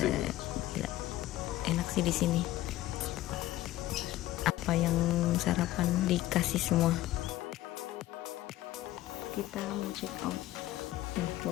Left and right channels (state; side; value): quieter; right; 15.4 dB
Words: Enak sih di sini. Apa yang sarapan dikasih semua. Kita mau check out.